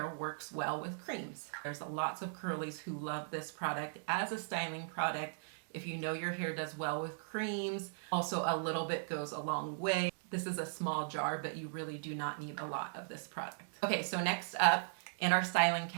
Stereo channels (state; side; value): silent; left; digital silence